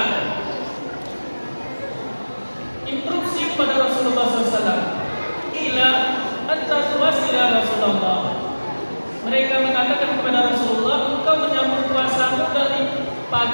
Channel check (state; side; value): inverted; both; correlation -1.00